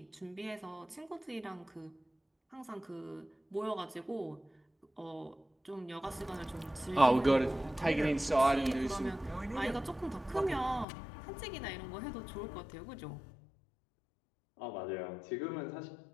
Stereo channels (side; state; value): right; drops out; at 10.9 s